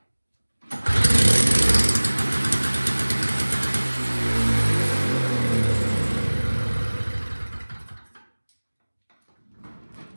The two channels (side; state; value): both; inverted; correlation -1.00